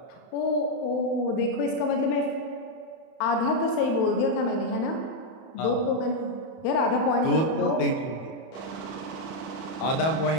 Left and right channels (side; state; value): right; late; 31 ms